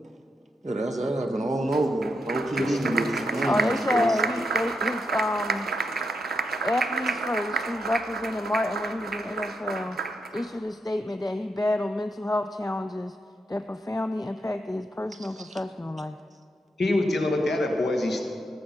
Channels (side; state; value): both; normal; correlation 0.83